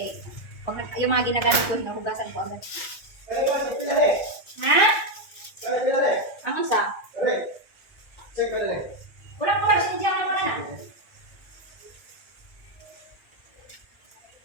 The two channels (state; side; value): late; right; 1.9 ms